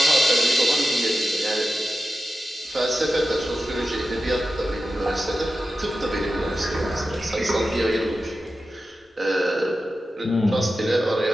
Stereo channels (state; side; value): normal; both; correlation 0.92